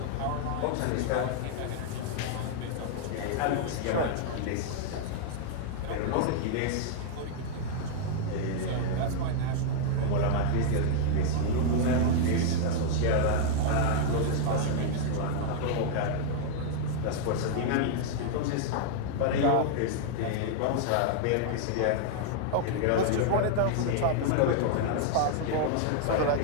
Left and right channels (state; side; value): different; both; correlation 0.00